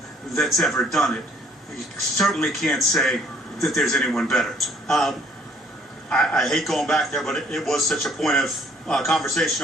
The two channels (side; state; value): both; normal; correlation 0.60